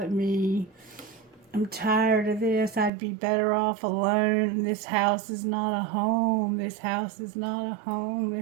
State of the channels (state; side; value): drops out; left; at 2.9 s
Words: me. I'm tired of this. I'd be better off alone. This house is not a home. This house is not a home.